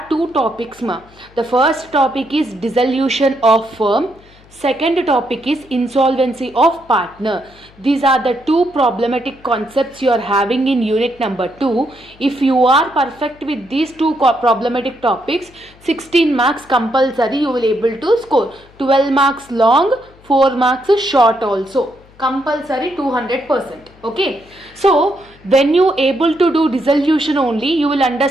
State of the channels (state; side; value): noise; left; hum, 26 dB below the sound